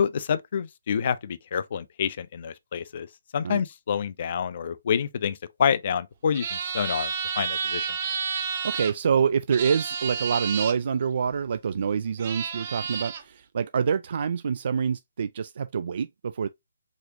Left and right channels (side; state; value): both; inverted; correlation -0.73